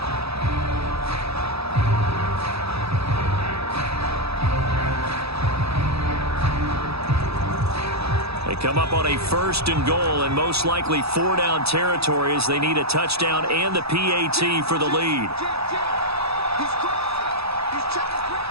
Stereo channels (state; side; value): late; left; 0.78 ms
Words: They come up on a 1st and goal and most likely 4-down territory as they need a touchdown and the PAT for the lead.